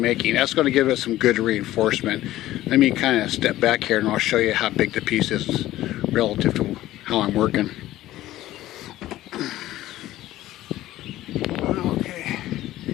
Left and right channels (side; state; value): right; quieter; 15.1 dB